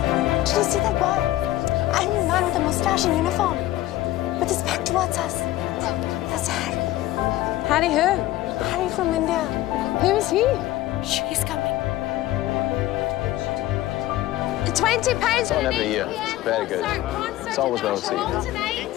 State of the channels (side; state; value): right; quieter; 15.4 dB